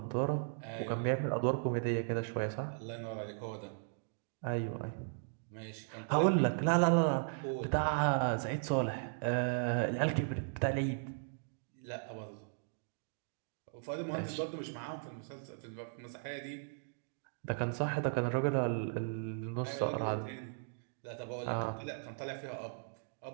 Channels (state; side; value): silent; left; digital silence